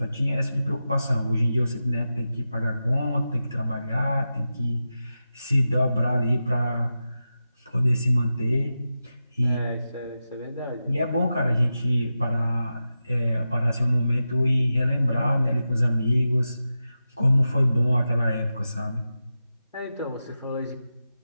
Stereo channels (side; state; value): both; inverted; correlation -0.91